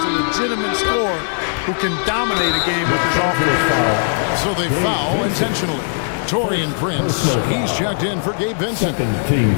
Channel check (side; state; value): right; silent; digital silence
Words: legitimate scorer who can dominate a game with his offense. So they foul intentionally. Torian Prince, he's checked in for Gabe Vincent. Team